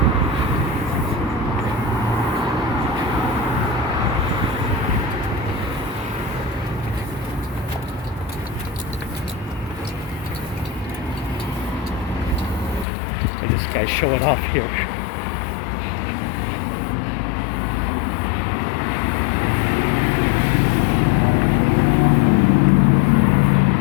And this guy's showing off here.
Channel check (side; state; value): right; drops out; at 12.9 s